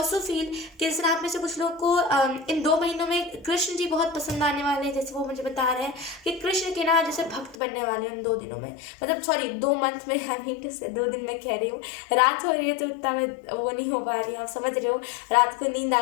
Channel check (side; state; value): right; drops out; at 7.6 s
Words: फील कि जैसे आप में से कुछ लोग को इन 2 महीनों में कृष्ण जी बहुत पसंद आने वाले हैं, जैसे वो मुझे बता रहे हैं कि कृष्ण के ना जैसे भक्त बनने वाले हैं इन 2 दिनों में, मतलब सॉरी 2 मंथ में, आई मीन टू से 2 दिन में कह रही हूँ, रात हो रही है तो उतना मैं वो नहीं हो पा रही हूँ, आप समझ रहे हो, रात को नींद